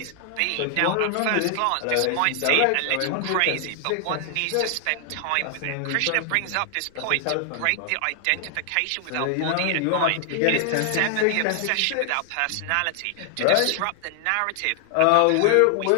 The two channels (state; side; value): different; both; correlation 0.00